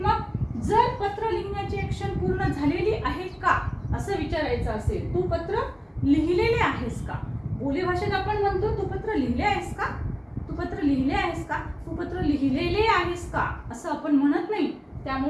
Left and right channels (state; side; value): identical; both; correlation 1.00